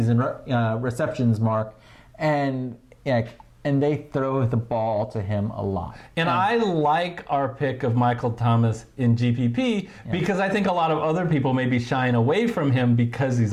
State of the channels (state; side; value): identical; both; correlation 1.00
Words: receptions mark, and they throw the ball to him a lot. And I like our pick of Michael Thomas in GPP because I think a lot of other people may be shying away from him because he's